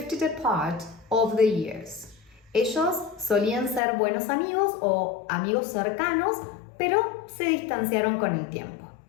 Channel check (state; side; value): drops out; right; at 3.8 s